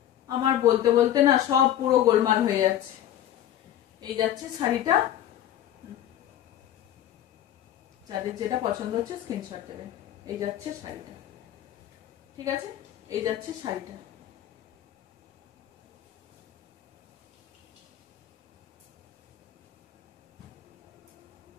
আমার বলতে বলতে না সব পুরো গোলমাল হয়ে যাচ্ছে। এই যাচ্ছে শাড়িটা, যাদের যেটা পছন্দ হচ্ছে স্ক্রিনশট দেবেন। এই যাচ্ছে শাড়িটা, ঠিক আছে, এই যাচ্ছে শাড়িটা।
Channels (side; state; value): right; quieter; 11.5 dB